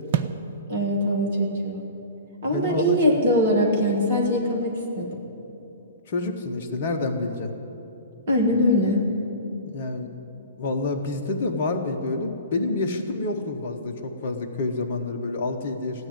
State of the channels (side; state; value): both; inverted; correlation -0.36